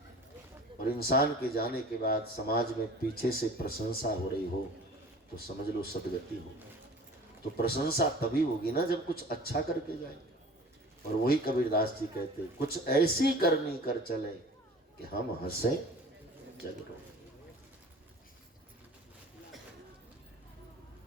और इंसान के जाने के बाद समाज में पीछे से प्रशंसा हो रही हो तो समझ लो सदगति हो। तो प्रशंसा तभी होगी ना जब कुछ अच्छा करके जाए। और वही कबीरदास जी कहते कुछ ऐसी करनी कर चले कि हम हंसे जग रोए।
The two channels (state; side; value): normal; both; correlation 0.43